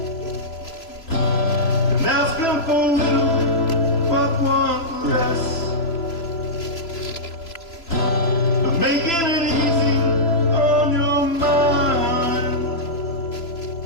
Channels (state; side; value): late; right; 3.0 ms